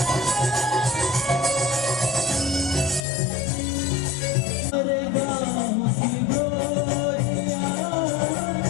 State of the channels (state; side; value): drops out; right; at 3.0 s